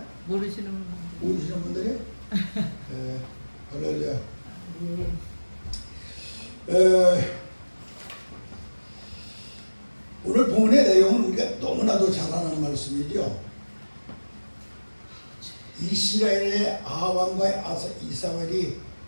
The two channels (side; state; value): both; inverted; correlation -1.00